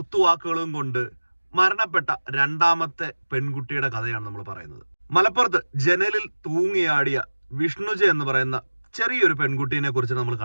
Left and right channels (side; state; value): both; inverted; correlation -1.00